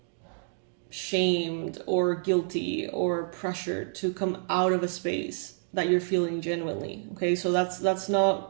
shamed or guilty or pressured to come out of a space that you're feeling genuinely. Okay, so that's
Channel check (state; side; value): silent; left; digital silence